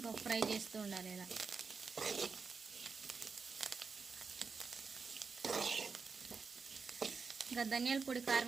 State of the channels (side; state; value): left; quieter; 5.1 dB